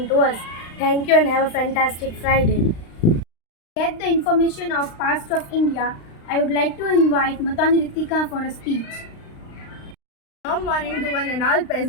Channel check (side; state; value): right; late; 35 ms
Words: to us. Thank you and have a fantastic Friday. Get the information of past of India. I would like to invite Matani Ritika for a speech. Good morning to one and all